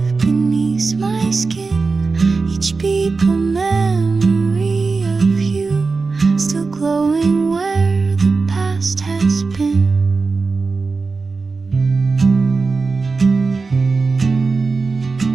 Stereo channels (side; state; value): left; quieter; 4.2 dB